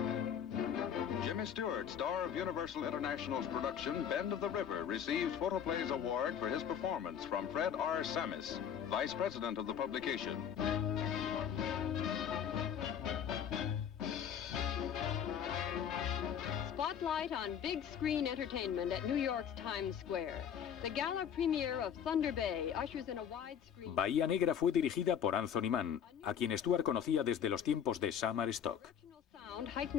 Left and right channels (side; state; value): right; quieter; 8.5 dB